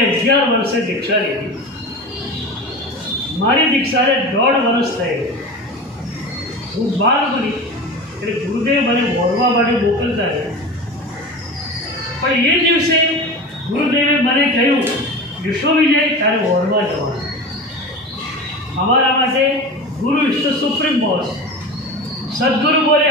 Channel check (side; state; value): both; normal; correlation 0.30